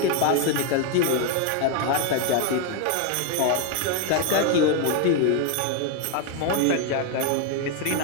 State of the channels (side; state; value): both; different; correlation 0.01